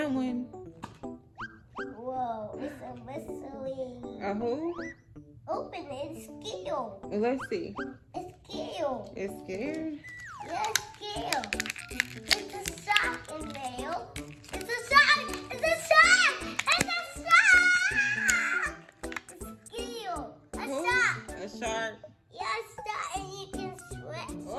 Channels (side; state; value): both; identical; correlation 1.00